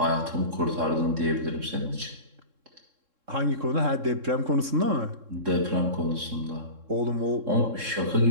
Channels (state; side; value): late; left; 3.7 ms